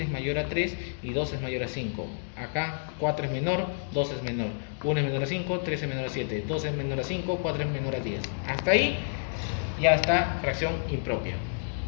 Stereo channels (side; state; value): right; silent; digital silence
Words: es mayor a 3 y 2 es mayor a 5. Acá 4 es menor, 2 es menor. 1 es menor a 5, 3 es menor a 7. 2 es menor a 5, 4 es menor a 10. Hasta ahí ya está fracción impropia.